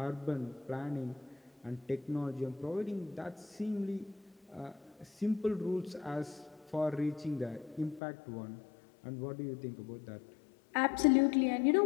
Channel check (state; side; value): drops out; right; at 8.0 s